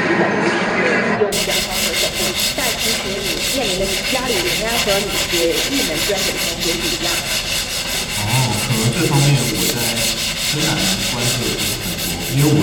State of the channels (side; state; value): both; identical; correlation 1.00